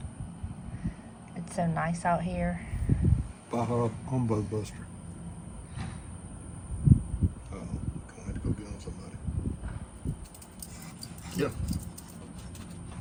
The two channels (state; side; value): identical; both; correlation 1.00